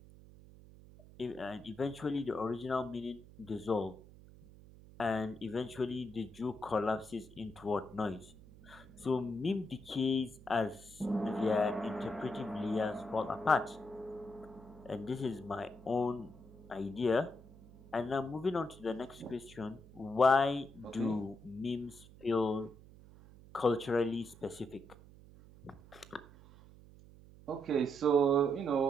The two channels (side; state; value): right; noise; hum, 20 dB below the sound